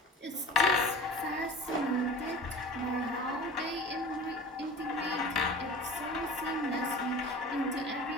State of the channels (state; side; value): normal; both; correlation 0.38